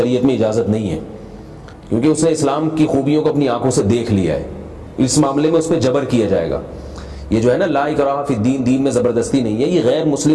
میں اجازت نہیں ہے، کیونکہ اس نے اسلام کی خوبیوں کو اپنی آنکھوں سے دیکھ لیا ہے. اس معاملے میں اس پہ جبر کیا جائے گا. یہ جو ہے نا لا اکراہ فی الدین، دین میں زبردستی نہیں ہے، یہ غیر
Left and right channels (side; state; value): both; identical; correlation 1.00